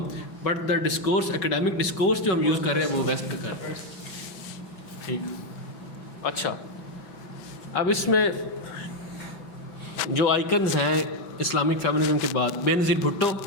but the discourse academic discourse جو ہم یوز کر رہے ہیں وہ ویسٹ کا کر رہے ہیں. ٹھیک. اچھا، اب اس میں جو آئیکنز ہیں اسلامک فیمنزم کے بعد، بے نظیر بھٹو،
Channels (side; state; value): right; late; 5.3 ms